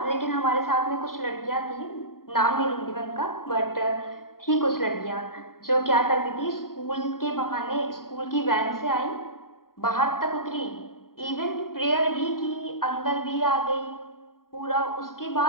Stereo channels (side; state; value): right; late; 0.92 ms